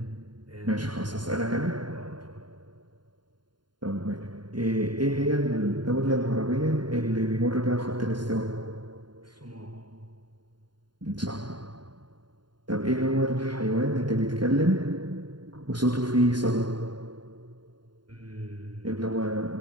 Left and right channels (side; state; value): left; late; 0.71 ms